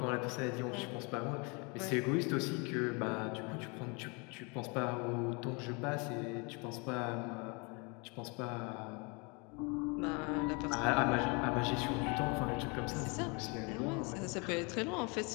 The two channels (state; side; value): quieter; right; 30.9 dB